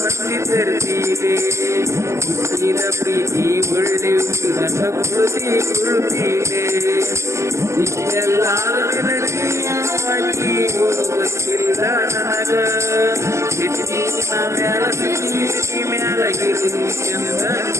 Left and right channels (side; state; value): left; late; 0.14 ms